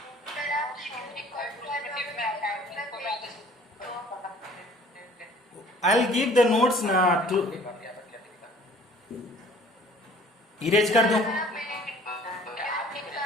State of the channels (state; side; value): normal; both; correlation 0.52